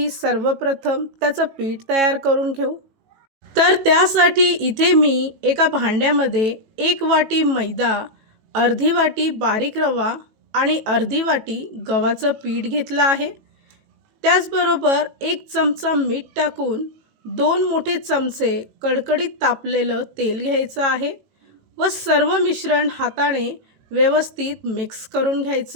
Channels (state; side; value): late; left; 18 ms